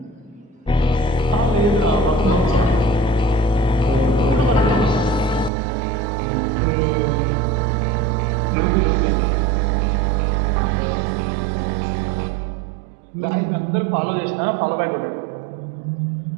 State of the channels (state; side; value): drops out; left; at 5.5 s